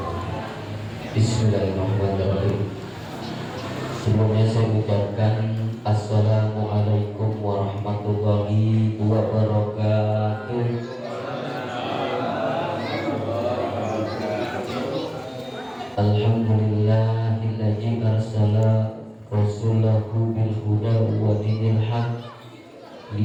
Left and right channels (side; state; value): both; identical; correlation 1.00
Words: Bismillahirrahmanirrahim. Sebelumnya saya ucapkan Assalamualaikum warahmatullahi wabarakatuh. Alhamdulillahilladzi arsala rasulahu bil huda wa dinil haq